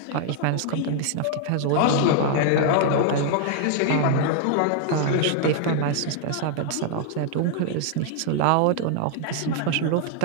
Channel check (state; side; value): different; both; correlation 0.00